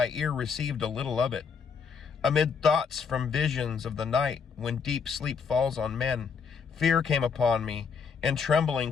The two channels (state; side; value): quieter; right; 6.0 dB